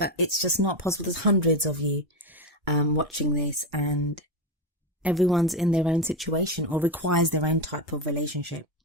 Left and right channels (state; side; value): normal; both; correlation 0.13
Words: it's just not possible. There's hundreds of you watching this, and everyone's in their own situation or requires their own type of relationship.